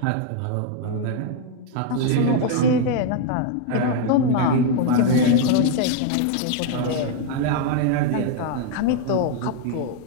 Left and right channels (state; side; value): different; both; correlation 0.00